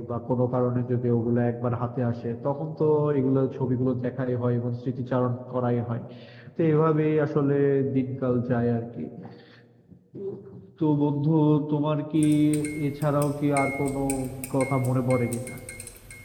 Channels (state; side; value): identical; both; correlation 1.00